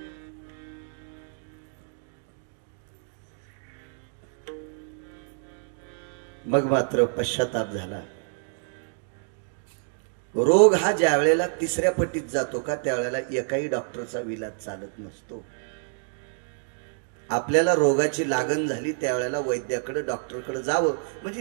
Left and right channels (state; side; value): silent; left; digital silence